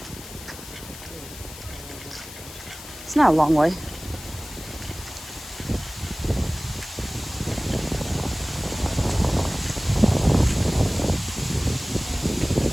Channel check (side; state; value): left; noise; hiss, 14 dB below the sound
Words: It's not a long way.